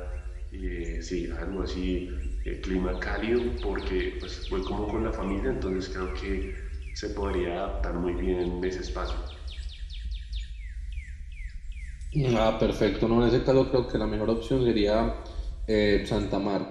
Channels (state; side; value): identical; both; correlation 1.00